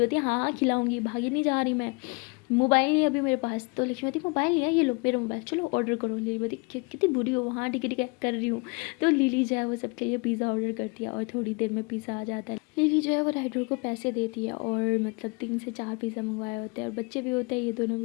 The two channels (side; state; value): right; quieter; 30.1 dB